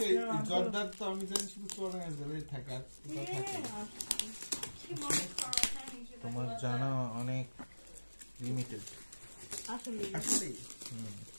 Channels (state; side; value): inverted; both; correlation -1.00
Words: জর্দার তো আমি জানি শুধু চোরাঙ্গাজলে থাকে তোমার জানা অনেক লিমিটেড আসলে